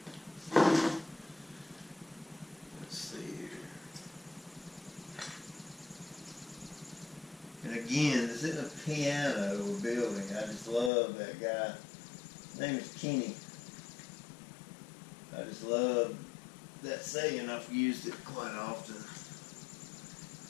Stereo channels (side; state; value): right; drops out; at 10.9 s